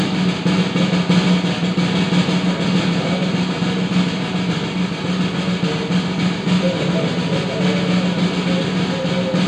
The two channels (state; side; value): identical; both; correlation 1.00